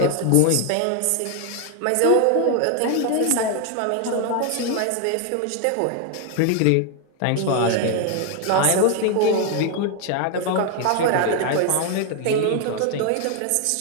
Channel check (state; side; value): different; both; correlation 0.01